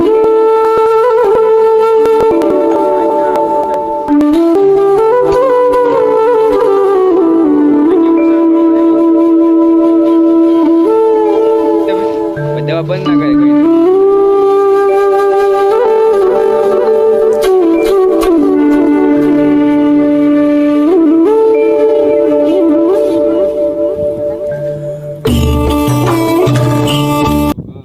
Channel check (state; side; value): identical; both; correlation 1.00